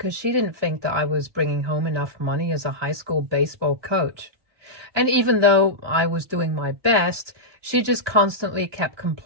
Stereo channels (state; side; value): late; left; 1.2 ms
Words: she didn't think that I was bringing home enough money as a high school baseball coach. And even though I was doing my best, she just constantly kept